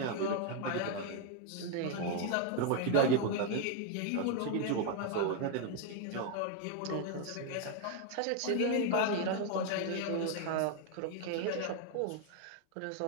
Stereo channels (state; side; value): different; both; correlation 0.01